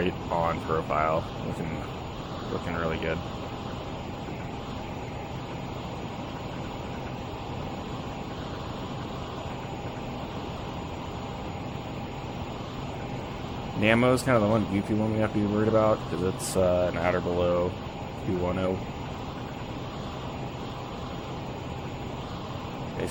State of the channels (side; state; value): both; identical; correlation 1.00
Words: on profile. Looking really good. Namo is kind of the one goofy one we have to be worried about because it's an at or below 210.